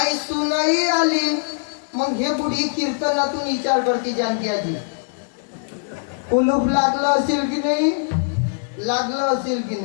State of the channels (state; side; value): silent; right; digital silence